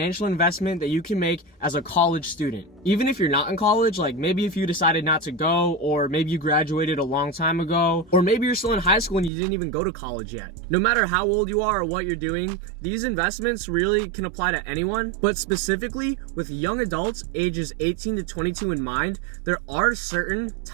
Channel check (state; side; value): drops out; left; at 9.3 s